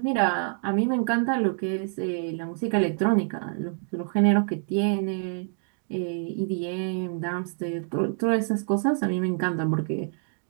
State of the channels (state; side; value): silent; left; 60 dB below the other